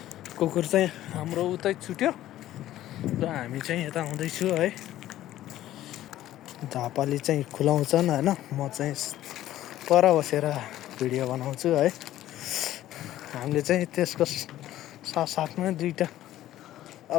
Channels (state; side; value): quieter; right; 13.8 dB